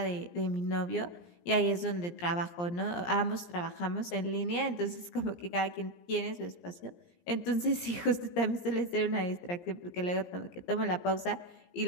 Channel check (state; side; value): late; right; 17 ms